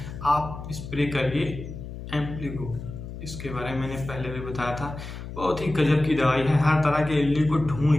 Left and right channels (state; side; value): noise; left; hum, 10 dB below the sound